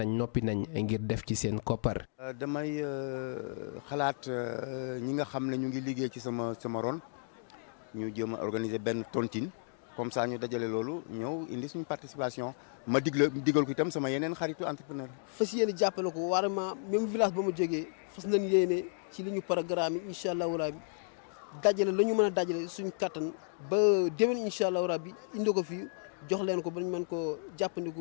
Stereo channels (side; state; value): right; silent; digital silence